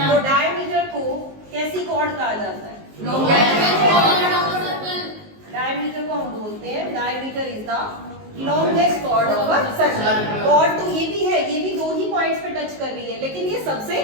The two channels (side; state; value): left; late; 19 ms